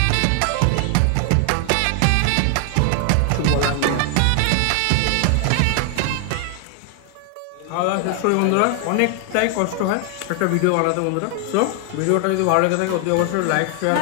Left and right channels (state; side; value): different; both; correlation 0.00